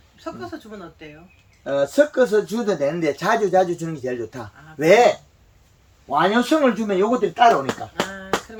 섞어서 주면 어때요? 섞어서 줘도 되는데 자주 주는 게 제일 좋다. 아, 왜? 완효성을 주면 요것들이 따라오니까. 아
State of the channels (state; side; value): identical; both; correlation 1.00